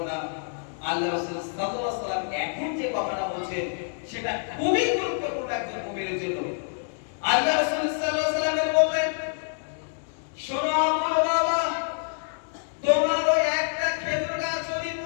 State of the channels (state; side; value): silent; right; digital silence